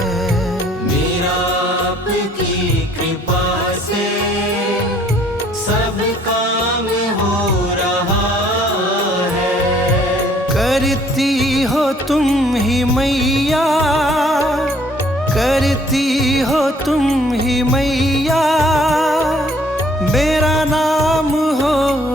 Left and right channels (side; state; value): both; normal; correlation 0.60